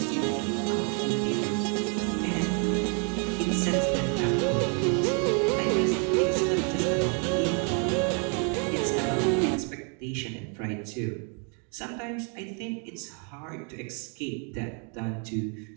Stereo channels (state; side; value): quieter; left; 39.5 dB